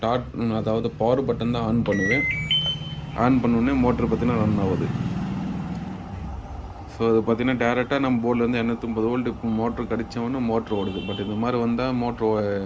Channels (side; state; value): both; identical; correlation 1.00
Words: அதாவது பவர் பட்டன் தான் ஆன் பண்ணுவேன். ஆன் பண்ணோடனே மோட்ரு பார்த்தீங்கன்னா ரன் ஆகுது. ஸோ அது பார்த்திங்கன்னா டேரெக்டாக நம்ம போர்ட்லேருந்து 230 வோல்ட்டு மோட்ரு கடித்தவொன்னே மோட்ரு ஓடுது. பட் இந்த மாதிரி வந்தால் மோட்ரு